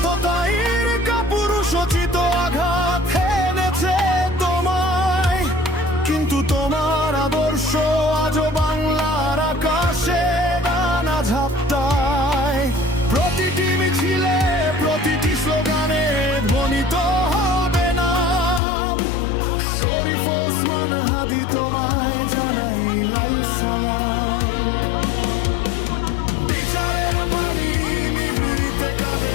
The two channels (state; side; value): drops out; right; at 18.6 s